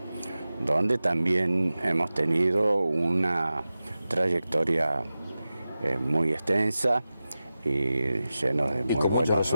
donde también hemos tenido una trayectoria muy extensa y lleno de muy buenos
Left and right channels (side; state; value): both; inverted; correlation -0.94